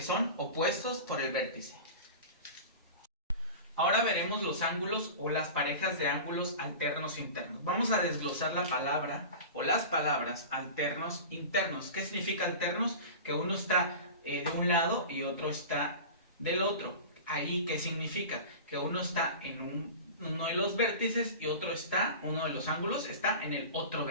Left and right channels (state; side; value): inverted; both; correlation -0.33